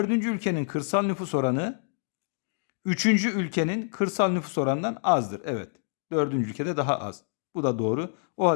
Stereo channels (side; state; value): right; silent; digital silence